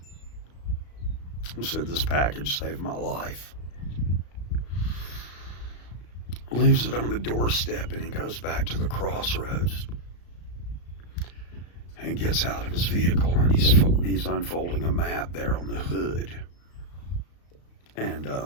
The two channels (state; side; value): late; right; 34 ms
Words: He said, "This package saved my life." Leaves it on the doorstep, and he goes back to the crossroads and gets out of his vehicle, and he's unfolding a map there on the hood. And